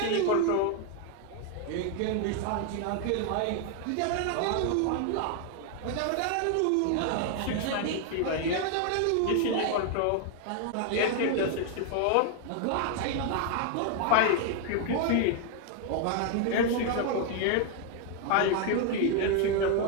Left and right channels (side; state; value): both; different; correlation 0.00